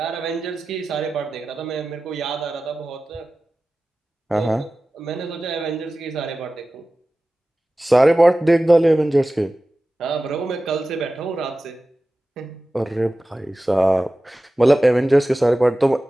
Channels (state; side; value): normal; both; correlation 0.96